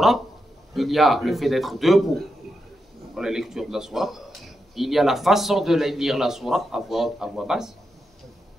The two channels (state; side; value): normal; both; correlation 0.86